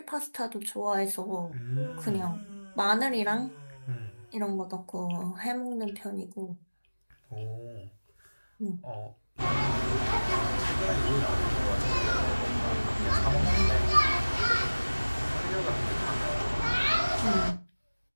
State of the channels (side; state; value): both; inverted; correlation -1.00